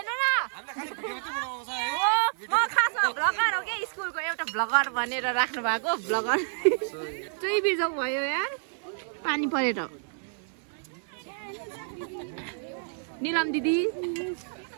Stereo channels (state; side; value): silent; left; 59 dB below the other